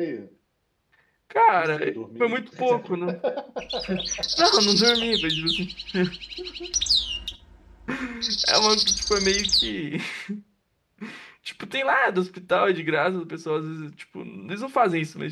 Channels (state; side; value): identical; both; correlation 1.00